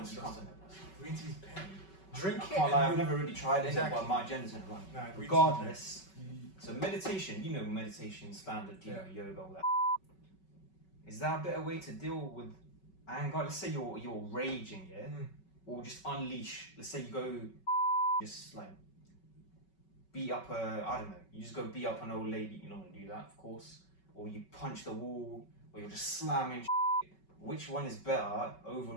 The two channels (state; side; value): late; right; 5.3 ms